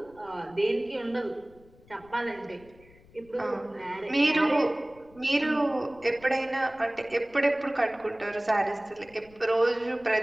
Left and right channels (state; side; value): noise; left; rumble, 26 dB below the sound